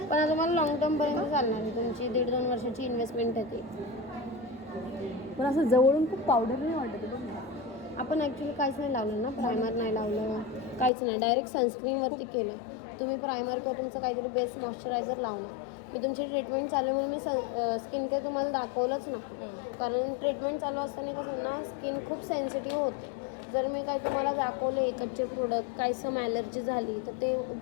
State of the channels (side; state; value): right; drops out; at 10.9 s